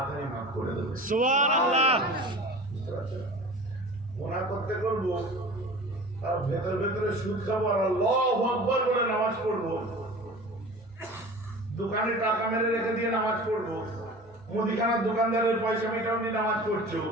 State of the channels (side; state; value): both; normal; correlation 0.39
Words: মাফ করে দেবে। সুবহানাল্লাহ। গুনাহ করতে করবো, আর ভেতর ভেতরে সুদ খাবো, আর আল্লাহু আকবার বলে নামাজ পড়বো, দোকানে টাকা মেরে রেখে দিয়ে নামাজ পড়বো, মুদিখানার দোকানদারের পয়সা মিটাও নিয়ে নামাজ পড়ছো,